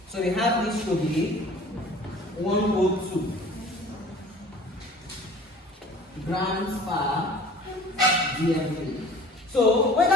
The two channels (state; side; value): normal; both; correlation 0.46